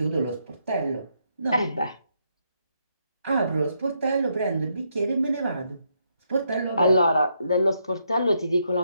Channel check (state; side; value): inverted; both; correlation -0.77